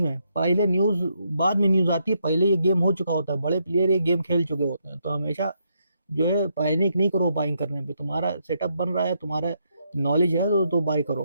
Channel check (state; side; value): inverted; both; correlation -0.78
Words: है, पहले न्यूज़, बाद में न्यूज़ आती है, पहले ये गेम हो चुका होता है, बड़े प्लेयर ये गेम खेल चुके होते हैं। तो हमेशा जो है पैनिक नहीं करो बाइंग करने पे, तुम्हारा सेटअप बन रहा है, तुम्हारा नॉलेज है तो बाय